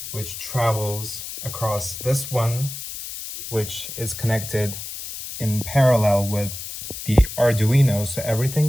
which travels across this one, which is connected in parallel with the Arduino, so everything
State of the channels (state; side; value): noise; left; hiss, 9 dB below the sound